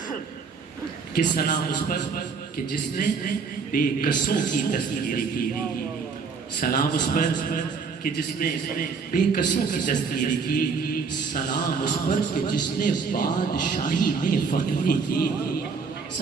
کہ سلام اس پر کہ جس نے بے کسوں کی دستگیری کی، سلام اس پر کہ جس نے بے کسوں کی دستگیری کی، سلام اس پر کہ جس نے بادشاہی میں فقیری کی،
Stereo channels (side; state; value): left; quieter; 5.2 dB